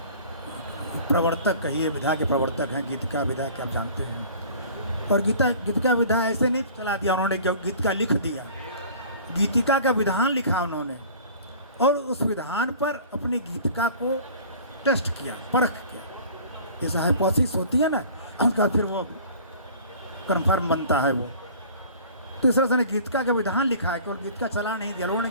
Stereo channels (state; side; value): inverted; both; correlation -0.46